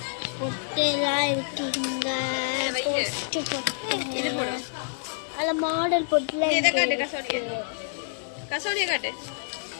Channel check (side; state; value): right; silent; digital silence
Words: பொட்டெல்லாம் இருக்குங்க. பொட்டு பொட்டு அதில் மாடல் பொட்டுலாம் இருக்கு. கசோடியை காட்டு.